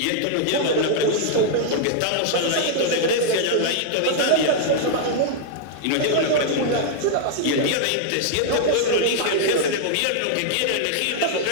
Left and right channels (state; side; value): different; both; correlation -0.01